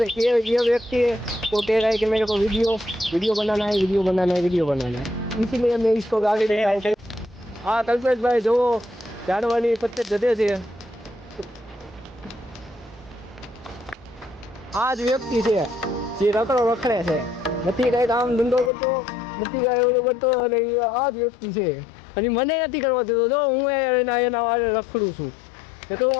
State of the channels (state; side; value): drops out; right; at 18.7 s